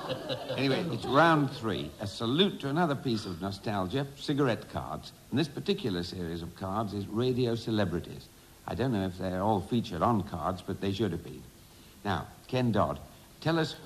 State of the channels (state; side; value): identical; both; correlation 1.00